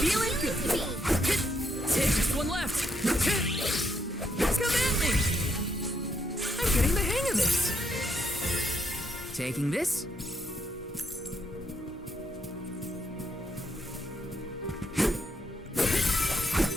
good! Take just one left! Come at me! I'm getting the hang of this! Taking this?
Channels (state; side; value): normal; both; correlation 0.76